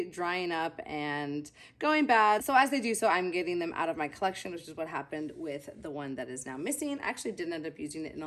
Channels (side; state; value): both; identical; correlation 1.00